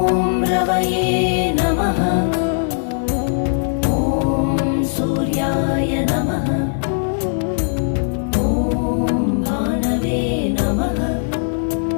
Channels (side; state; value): right; silent; digital silence